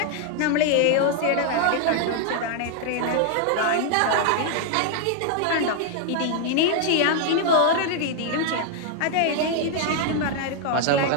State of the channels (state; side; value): different; both; correlation 0.00